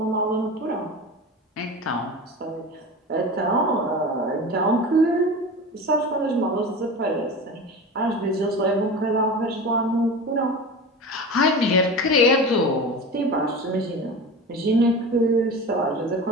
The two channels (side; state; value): both; normal; correlation 0.31